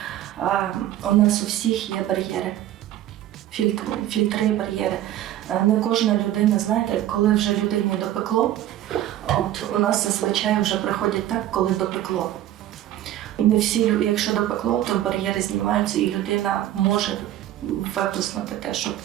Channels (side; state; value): left; quieter; 13.0 dB